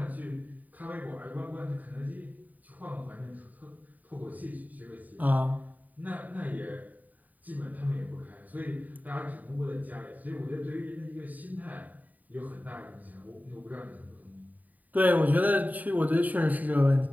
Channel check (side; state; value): left; late; 0.078 ms